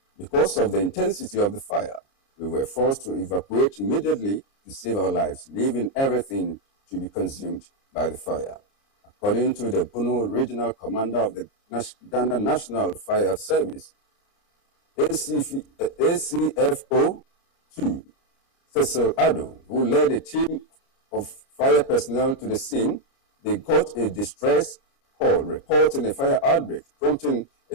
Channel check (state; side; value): late; right; 29 ms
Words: Because of the intensity of the fire, we were forced to evacuate immediately to save our lives, leaving everything to be consumed by the fire. According to the Bono Regional Commander of the Ghana National Fire Service, ACFO 2, Cecil Ado, who led a team of fire personnel to the scene, they got a distress call reporting a fire outbreak, prompting